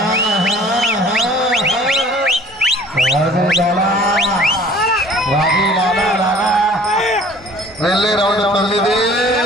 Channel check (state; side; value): normal; both; correlation 0.50